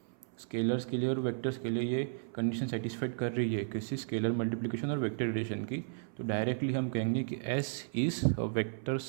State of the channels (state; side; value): silent; left; 55 dB below the other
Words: स्केलर्स के लिए और वेक्टर्स के लिए ये कंडीशन सेटिस्फाइड कर रही है किसी स्केलर मल्टीप्लिकेशन और वेक्टर एडिशन की, तो डायरेक्टली हम कहेंगे कि S is a vector